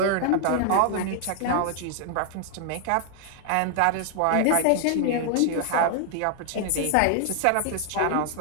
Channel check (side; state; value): both; different; correlation 0.00